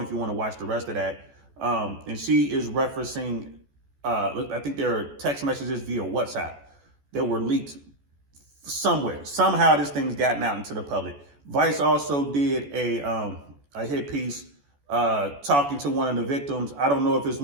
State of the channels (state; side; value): late; left; 14 ms